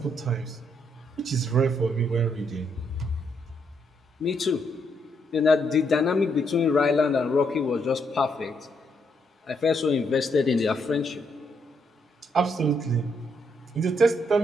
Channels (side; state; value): both; normal; correlation 0.76